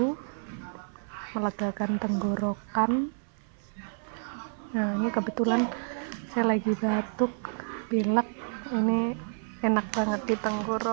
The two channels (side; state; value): left; silent; 58 dB below the other